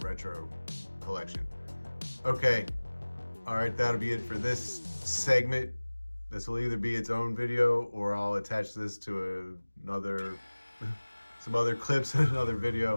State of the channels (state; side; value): inverted; both; correlation -1.00